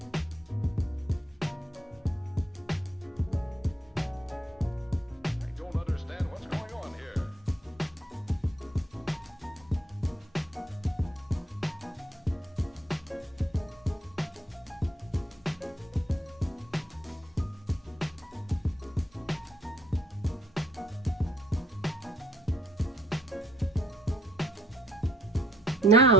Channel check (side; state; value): both; normal; correlation 0.65